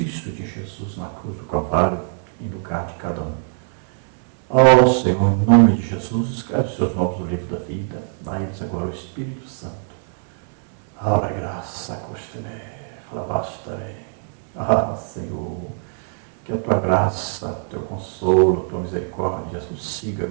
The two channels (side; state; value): left; silent; 64 dB below the other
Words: de Jesus na cruz do Calvário, em lugar de cada um. Oh, Senhor, em nome de Jesus, escreve os seus nomes no livro da vida. Dá a eles agora o Espírito Santo. Ora graça, costeme, flavastarei. Ah, Senhor, que a Tua graça, o Teu consolo, a Tua misericórdia, Jesus, siga